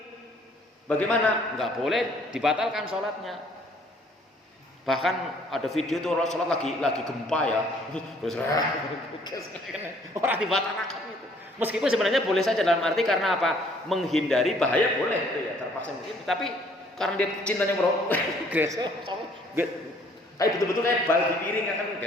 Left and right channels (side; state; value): both; normal; correlation 0.60